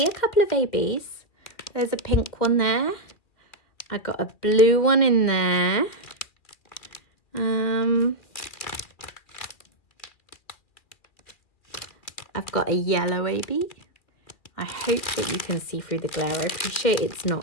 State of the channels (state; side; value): late; right; 2.5 ms